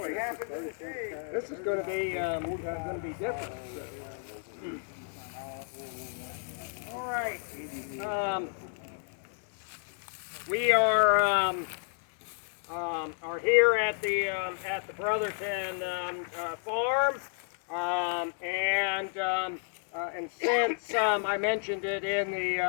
This is going to be different. All right. We are here at the Brotherton farm, and since I mentioned it in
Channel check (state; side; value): silent; right; 57 dB below the other